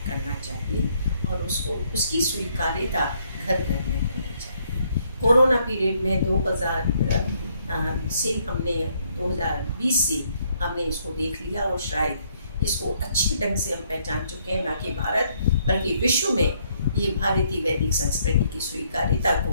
करना चाहिए और उसको उसकी स्वीकार्यता घर घर में होनी चाहिए। कोरोना पीरियड में 2000 से हमने 2020 से हमने इसको देख लिया और शायद इसको अच्छे ढंग से हम पहचान चुके हैं, ना कि भारत बल्कि विश्व में ये भारतीय वैदिक संस्कृति की स्वीकार्यता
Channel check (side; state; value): both; inverted; correlation -0.70